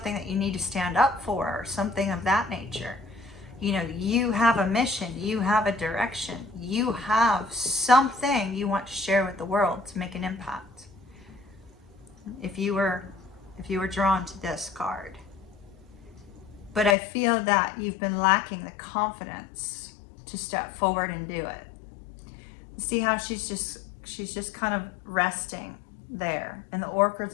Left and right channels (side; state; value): right; drops out; at 16.9 s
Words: that you need to stand up for, or something of that nature. You have a mission, you have a direction, you have something you want to share with the world to make an impact. If you were drawn to this card. But I feel that you've been lacking the confidence to step forward and do it. See how she's just kind of resting there. And the orcas